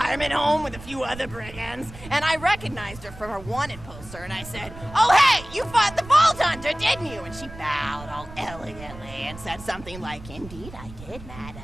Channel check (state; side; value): noise; right; rumble, 15 dB below the sound